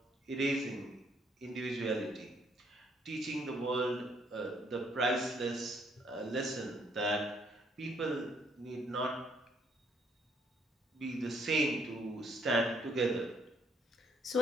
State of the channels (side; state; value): both; normal; correlation 0.69